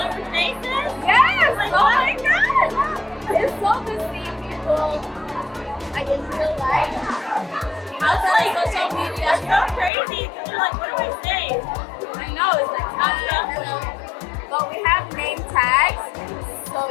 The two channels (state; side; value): drops out; right; at 9.9 s